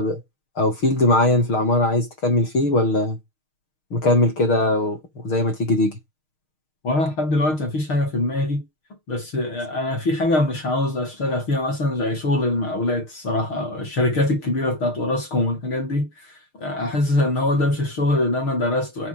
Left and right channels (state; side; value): late; right; 6.5 ms